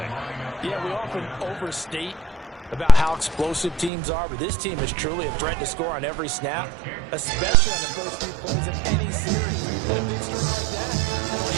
Yeah, we often overstate about how explosive teams are, but this team is truly a threat to score on every snap, especially on the first few plays of any series. And a big score like that, only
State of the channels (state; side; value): drops out; left; at 3.9 s